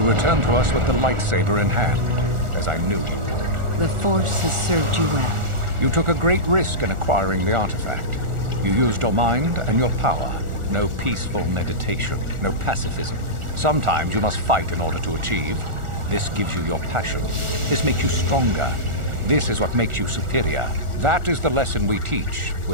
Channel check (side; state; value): left; late; 1.4 ms